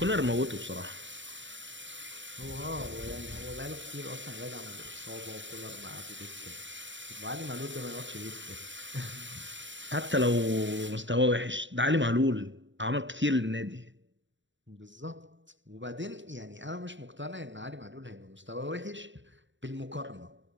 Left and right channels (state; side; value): late; left; 0.54 ms